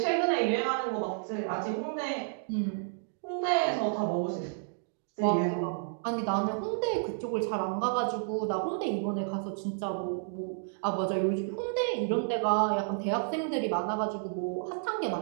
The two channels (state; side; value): silent; left; digital silence